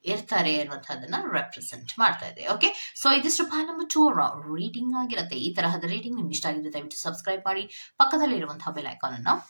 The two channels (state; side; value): inverted; both; correlation -1.00